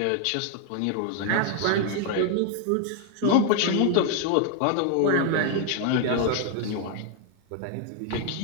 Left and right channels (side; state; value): both; different; correlation 0.00